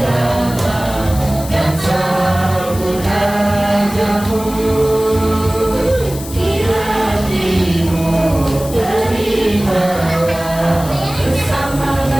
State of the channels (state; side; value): noise; left; hiss, 13 dB below the sound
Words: dan sambut rajamu, di hatimu terimalah bersama